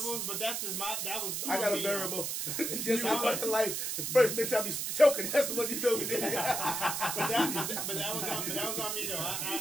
But that's just that was. I got a variable. Just like fucking life. The first bitch I be choking. That's what you do. but that was on me though.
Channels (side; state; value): right; noise; hiss, 2 dB below the sound